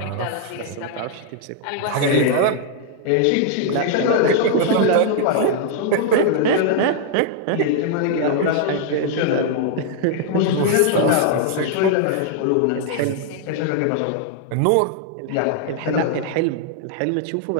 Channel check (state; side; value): different; both; correlation 0.00